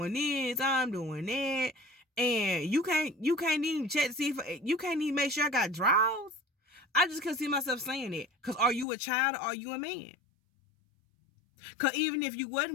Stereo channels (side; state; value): right; drops out; at 8.8 s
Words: this. I'm doing that. And you can't even check to see if you can't even make sure I got drawers. I just couldn't see myself saying it. Because are you a child or are you a man? Because even if you